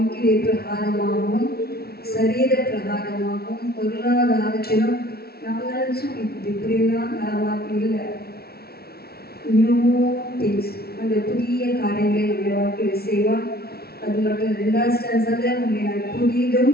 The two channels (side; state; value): right; late; 0.46 ms